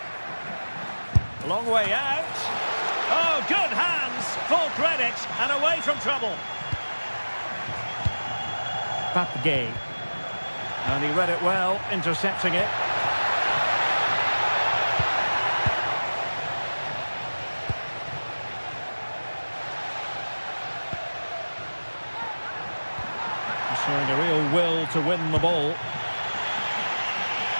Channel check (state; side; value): inverted; both; correlation -1.00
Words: Long way out. Oh, good hands. Full credit and away from trouble. Papgay. And he read it well, intercepting it. Showing a real will to win the ball.